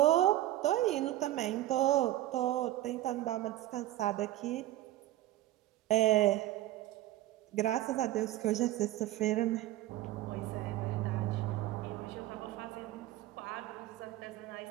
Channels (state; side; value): quieter; left; 14.9 dB